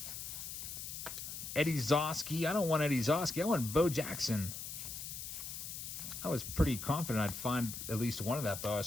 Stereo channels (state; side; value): noise; left; hiss, 7 dB below the sound